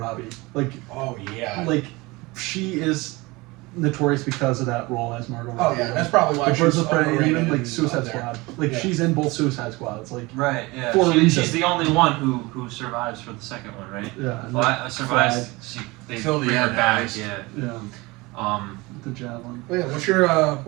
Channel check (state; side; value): quieter; left; 23.1 dB